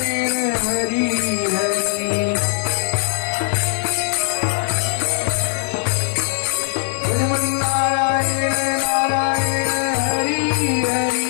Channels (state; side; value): silent; right; 66 dB below the other